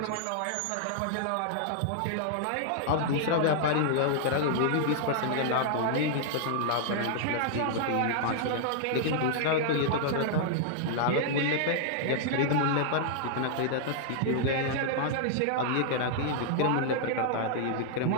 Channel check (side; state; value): both; different; correlation -0.01